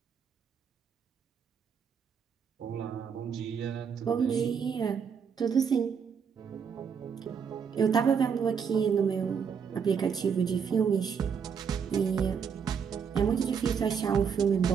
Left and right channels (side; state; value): left; quieter; 6.8 dB